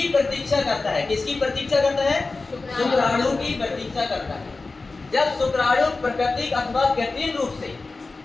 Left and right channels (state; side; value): quieter; right; 3.7 dB